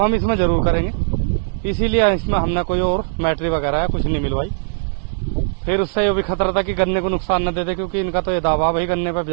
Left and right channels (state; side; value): silent; left; digital silence